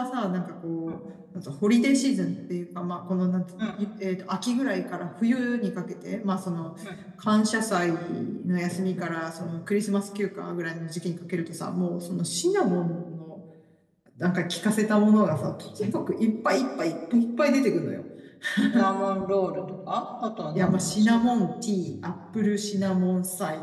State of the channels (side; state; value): both; identical; correlation 1.00